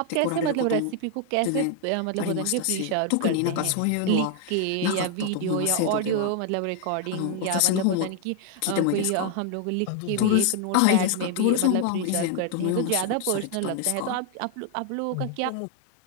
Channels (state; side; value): different; both; correlation 0.00